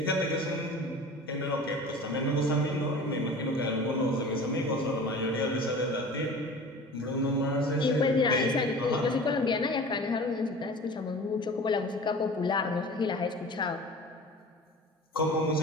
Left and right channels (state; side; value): normal; both; correlation 0.39